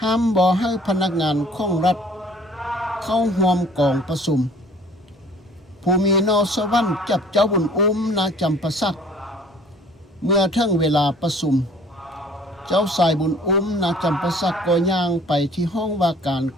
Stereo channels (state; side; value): normal; both; correlation 0.52